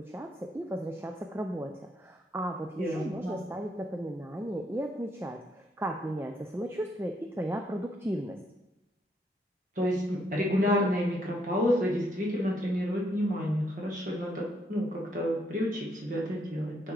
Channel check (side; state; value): both; normal; correlation 0.73